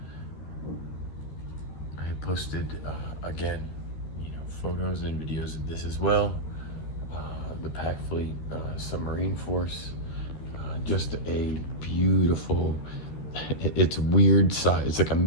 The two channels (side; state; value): right; late; 13 ms